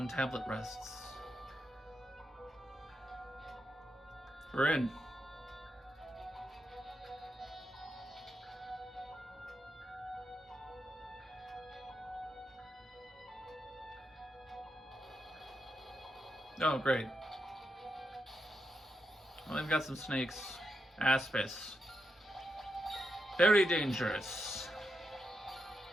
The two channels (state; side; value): normal; both; correlation 0.85